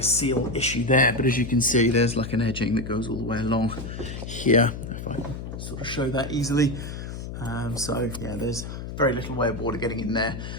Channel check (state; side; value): noise; left; hum, 8 dB below the sound